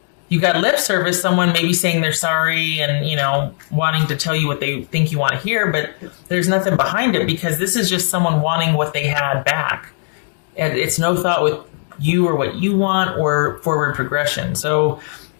You got lip service, someone maybe saying they're sorry and, wanting to tell you what they think you want to hear, but there's nothing behind it, because this is just someone wanting what they had back. And it's no thought with you or what you want or forward progression. So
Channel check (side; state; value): right; silent; digital silence